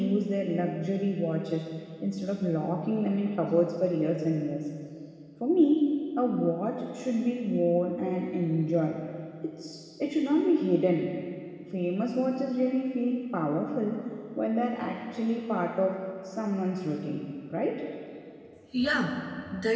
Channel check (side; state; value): both; identical; correlation 1.00